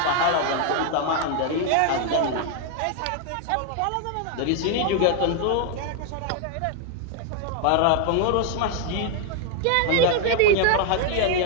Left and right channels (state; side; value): different; both; correlation 0.00